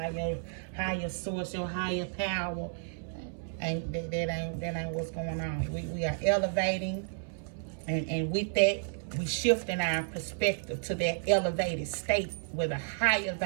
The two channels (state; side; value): silent; left; 57 dB below the other